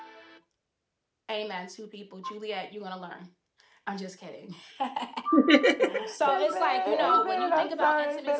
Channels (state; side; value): identical; both; correlation 1.00